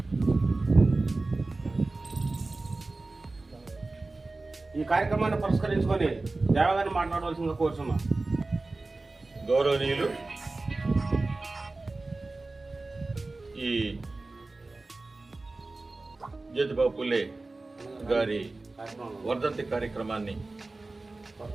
ఈ కార్యక్రమాన్ని పురస్కరించుకొని దేవగారిని మాట్లాడవలసిందిగా కోరుచున్నాం. గౌరవనీయులు, ఈ జ్యోతిరావు పూలే గారి వర్ధంతి కార్యక్రమాన్ని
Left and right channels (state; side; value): quieter; left; 3.3 dB